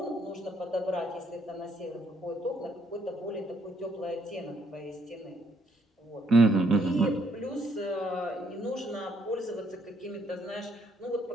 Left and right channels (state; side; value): normal; both; correlation 0.70